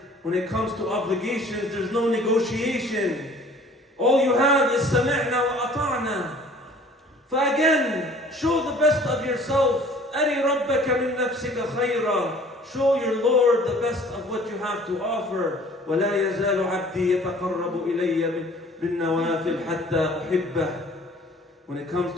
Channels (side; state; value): both; normal; correlation 0.51